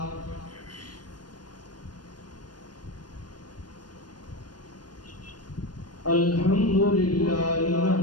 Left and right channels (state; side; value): late; right; 0.70 ms